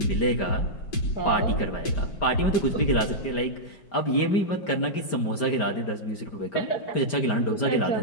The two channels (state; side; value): late; right; 5.0 ms